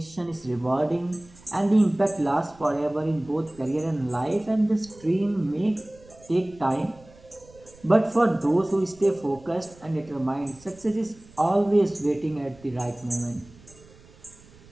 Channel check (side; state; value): right; noise; rumble, 24 dB below the sound